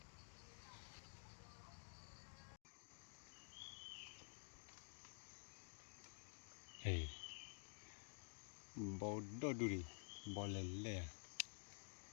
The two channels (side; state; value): right; silent; digital silence